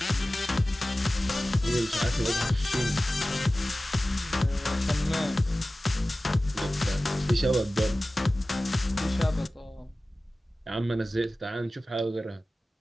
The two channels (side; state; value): both; normal; correlation 0.96